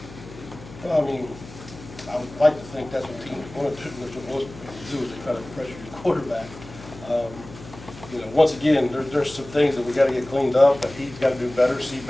Well, I mean, I would like to think that's what teams want to do is they try to pressure your quarterback. Once again, there's some things that we got to get cleaned up, that he's got to do better, see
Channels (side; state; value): left; noise; hum, 17 dB below the sound